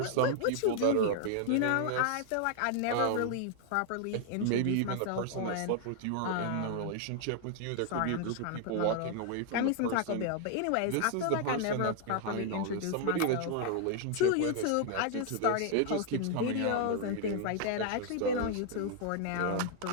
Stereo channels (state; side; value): different; both; correlation 0.00